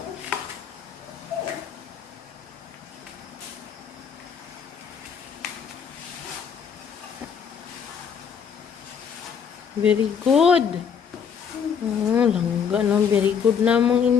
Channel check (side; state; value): right; quieter; 7.1 dB